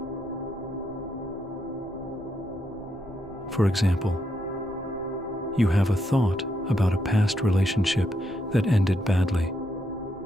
For example, you have a thought about a past relationship that ended badly.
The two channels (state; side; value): normal; both; correlation 0.79